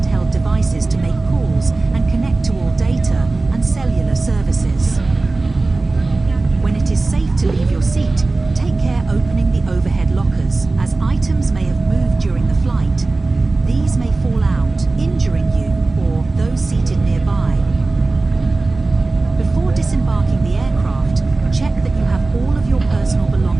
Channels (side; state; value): left; quieter; 3.4 dB